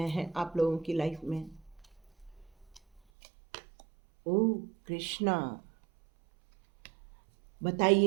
हैं आप लोगों की लाइफ में। ओ कृष्णा,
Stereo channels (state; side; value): drops out; left; at 3.0 s